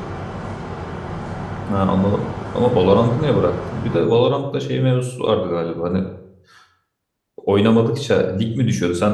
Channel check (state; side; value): identical; both; correlation 1.00